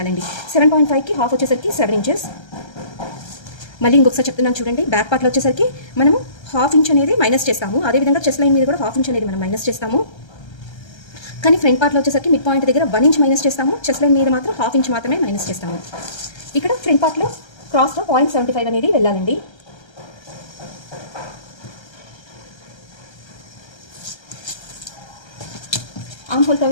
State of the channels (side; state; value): right; late; 1.3 ms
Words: 7.5కి ½ వచ్చేసరికి 7 ఇంచెస్. మళ్ళీ ఇంకొకసారి చెప్తున్నాను చూడండి. బ్యాక్ పార్ట్లో వచ్చేసరికి మనము ½ ఇంచ్ అనేది మైనస్ చేస్తాము, అదేవిధంగా చెస్ట్ లైన్ మీద కూడా ½ ఇంచ్ అనేది మనం మైనస్ చేస్తాము. కానీ ఫ్రంట్ పార్ట్లో వచ్చేసరికి మిడ్ పాయింట్ దగ్గర 1 ఇంచ్ మైనస్ చేస్తాము, చెస్ట్ లైన్ మీద మాత్రం ½ ఇంచ్ మాత్రమే మైనస్ చేస్తాము. ఇక్కడ ఫ్రంట్ పార్ట్లో క్రాస్లో 0.75 అనేది వెళ్ళాలండి. ఆర్మ్ హోల్